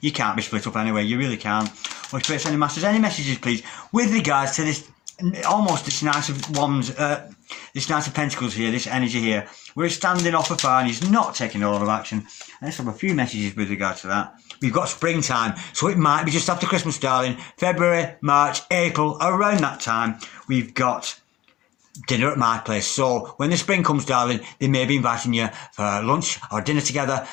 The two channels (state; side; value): quieter; right; 15.4 dB